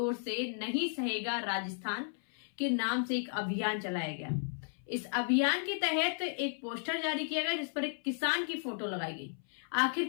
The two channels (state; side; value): silent; right; 55 dB below the other